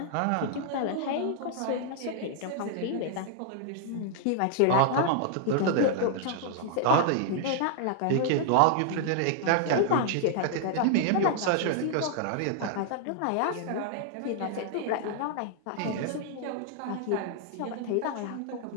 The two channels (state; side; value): different; both; correlation 0.00